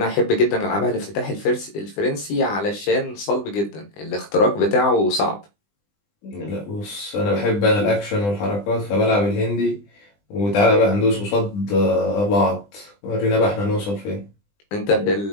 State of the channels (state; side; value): late; right; 20 ms